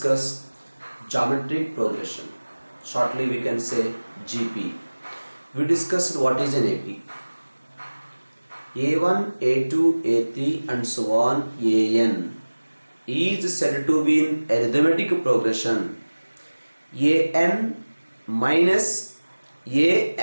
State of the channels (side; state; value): both; inverted; correlation -1.00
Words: geometric progression. Shortly we can say GP. We discussed what is an AP. A1, A2, A3 and so on AN is said to be in arithmetic progression. AN minus